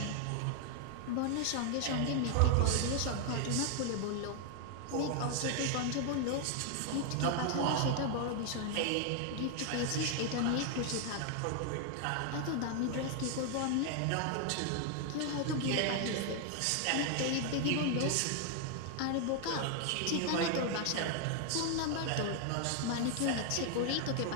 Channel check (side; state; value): both; different; correlation 0.00